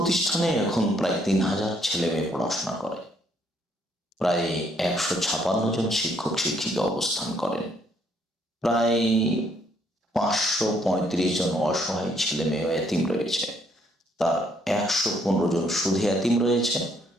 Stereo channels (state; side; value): normal; both; correlation 0.69